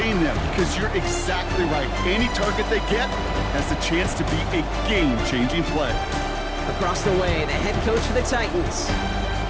them because you're exactly right. Any target they get has the chance to be a game-changing play. Across the way, the head coach for the Titans.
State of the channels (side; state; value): both; identical; correlation 1.00